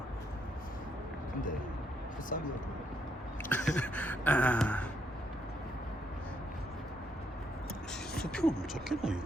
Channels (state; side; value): normal; both; correlation 0.75